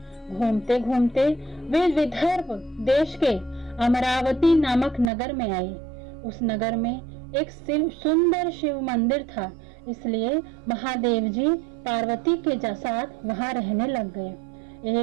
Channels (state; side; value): drops out; left; at 5.1 s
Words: घूमते घूमते वे विदर्भ देश के अमरावती नामक नगर में आए। उस नगर में एक सुंदर शिव मंदिर था, इसलिए महादेव जी पार्वती के साथ वहां रहने लग गए।